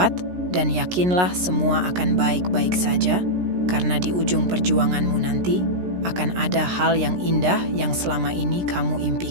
dan yakinlah semua akan baik-baik saja, karena di ujung perjuanganmu nanti akan ada hal yang indah yang selama ini kamu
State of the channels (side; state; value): left; late; 17 ms